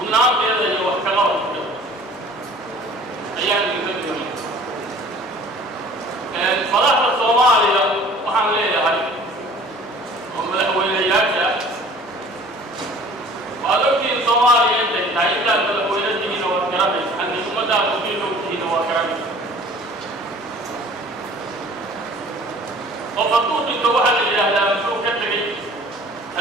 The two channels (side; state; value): both; normal; correlation 0.49